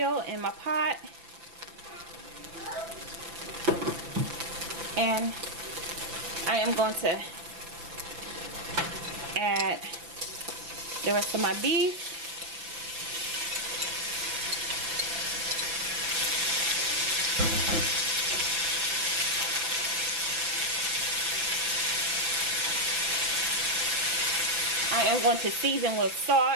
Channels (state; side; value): late; left; 5.9 ms